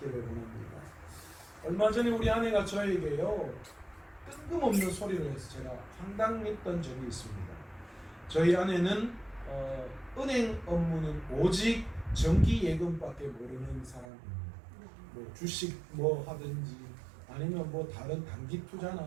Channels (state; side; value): drops out; left; at 14.1 s